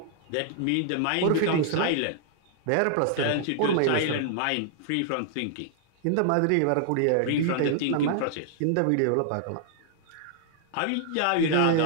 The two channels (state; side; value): different; both; correlation -0.01